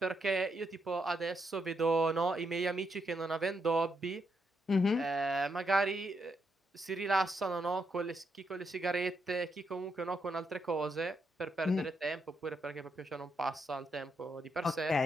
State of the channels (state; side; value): normal; both; correlation 0.80